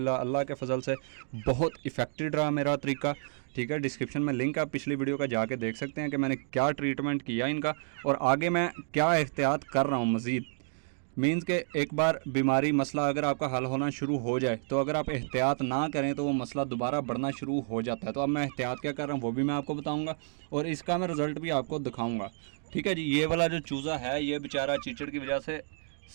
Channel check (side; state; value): left; silent; digital silence